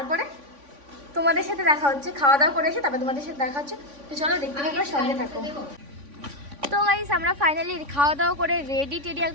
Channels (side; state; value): left; late; 3.5 ms